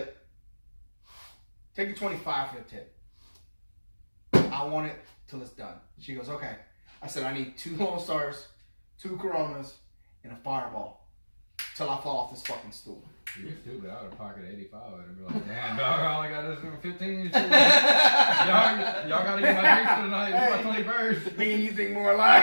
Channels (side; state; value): both; inverted; correlation -1.00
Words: Take your 25 for the tip. I want it till it's done. She goes, okay. I said, I need 2 Lone Stars, 2 Coronas, and a Fireball till I fall off this fucking stool. You're stupid. I would have pocketed 85 and be like, damn, dog, all I got is 15. y'all got to get my drinks for tonight. It's my 21st. Me and you think more